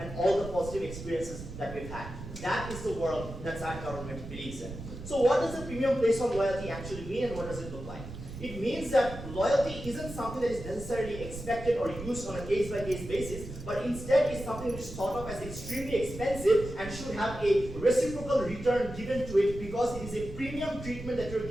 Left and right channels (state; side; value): noise; right; rumble, 11 dB below the sound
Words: all the positive experiences that we've had. That is the world that our government believes in. So what does a premium placed on loyalty actually mean, and what does it look like? It means that loyalty isn't something that is necessarily expected or used on a case-by-case basis, but instead is something which is thought of as extremely expensive and should have a reciprocal return given to it because it is a premium treatment that you're